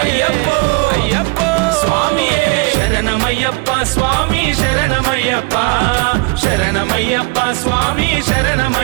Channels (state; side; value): quieter; left; 28.1 dB